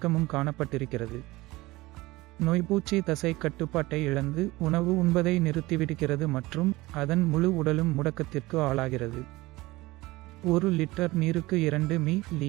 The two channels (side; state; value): left; quieter; 20.1 dB